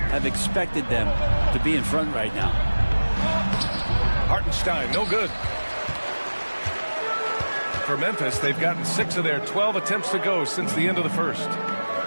have expected them to be in front right now. Hartenstein, no good. For Memphis, they've gotten 6 of their 12 attempts to go since the end of the first.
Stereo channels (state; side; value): inverted; both; correlation -1.00